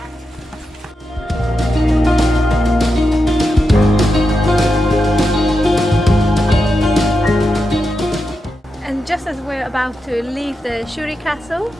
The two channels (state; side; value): normal; both; correlation 0.88